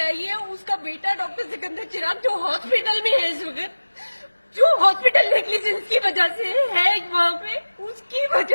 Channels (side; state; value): both; inverted; correlation -1.00